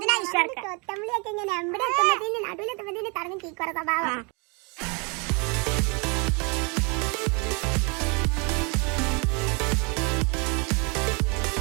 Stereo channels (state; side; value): quieter; left; 32.0 dB